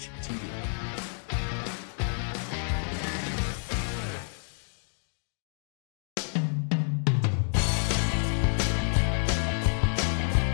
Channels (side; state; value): right; silent; 57 dB below the other